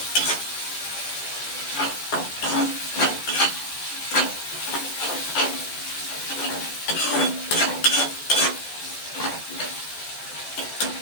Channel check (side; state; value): right; late; 14 ms